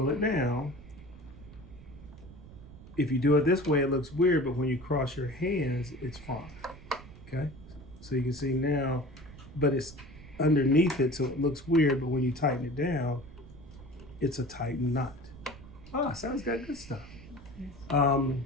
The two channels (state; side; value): noise; right; rumble, 18 dB below the sound